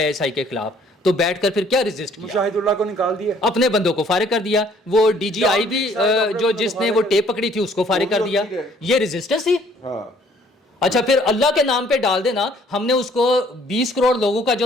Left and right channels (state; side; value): normal; both; correlation 0.60